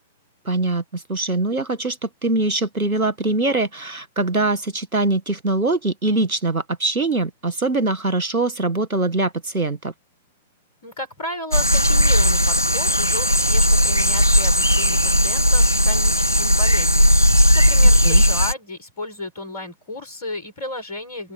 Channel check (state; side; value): inverted; both; correlation -0.59